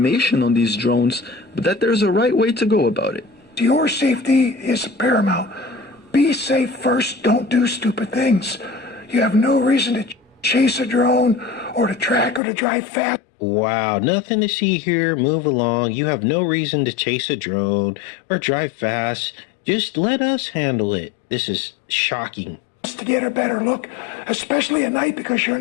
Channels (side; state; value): right; drops out; at 12.4 s